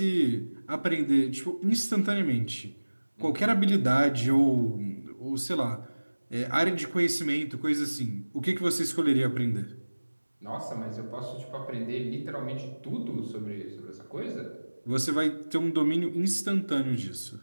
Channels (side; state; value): both; inverted; correlation -1.00